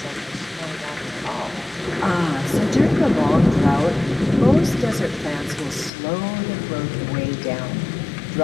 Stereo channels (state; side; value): drops out; right; at 5.9 s